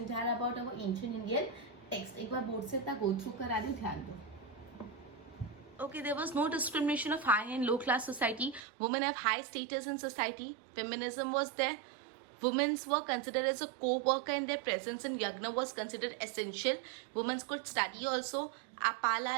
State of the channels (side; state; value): left; drops out; at 8.6 s